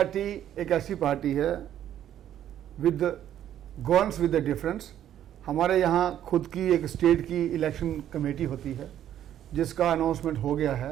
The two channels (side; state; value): left; quieter; 11.0 dB